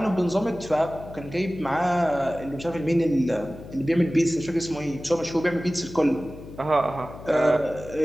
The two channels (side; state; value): left; noise; hum, 15 dB below the sound